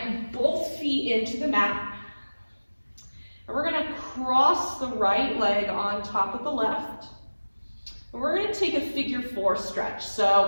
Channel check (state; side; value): inverted; both; correlation -1.00